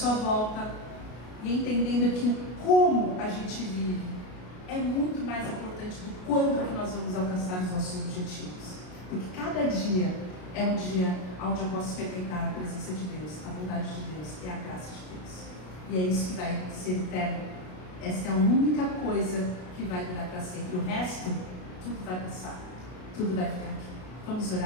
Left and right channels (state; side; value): late; right; 33 ms